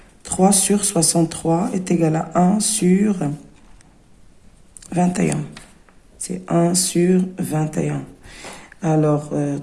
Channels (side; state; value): both; identical; correlation 1.00